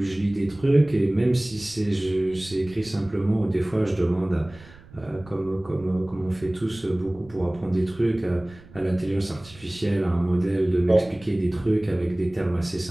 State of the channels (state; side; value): noise; right; rumble, 22 dB below the sound